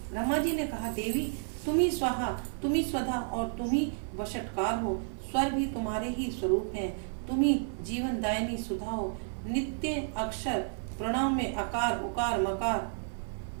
ब्रह्मा जी ने कहा, देवी तुम ही स्वाहा, तुम ही स्वधा और तुम ही वशटकार हो। स्वर भी तुम्हारे ही स्वरूप हैं। तुम ही जीवन दायिनी सुधा हो। नित्य अक्षर प्रणव में अकार, उकार, मकार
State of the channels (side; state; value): left; silent; digital silence